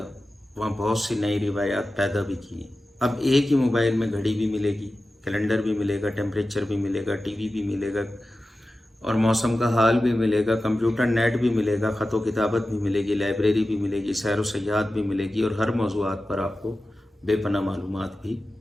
वहाँ बहुत सी नई रिवायात पैदा भी की। अब एक ही मोबाइल में घड़ी भी मिलेगी, कैलेंडर भी मिलेगा, टेम्परेचर भी मिलेगा, टीवी भी मिलेगा और मौसम का हाल भी मिलेगा, कंप्यूटर नेट भी मिलेगा, ख़त व किताबत भी मिलेगी, लाइब्रेरी भी मिलेगी, सैर व सयाहत भी मिलेगी और हर मौज़ूआत पर आपको बेपनाह मालूमात भी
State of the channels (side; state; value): both; normal; correlation 0.94